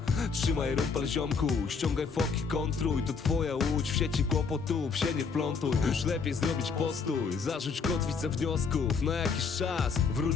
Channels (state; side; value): quieter; right; 5.3 dB